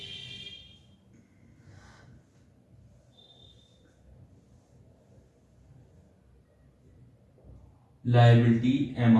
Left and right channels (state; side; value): identical; both; correlation 1.00